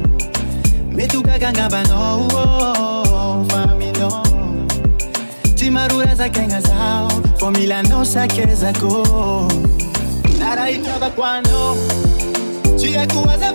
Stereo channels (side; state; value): both; inverted; correlation -1.00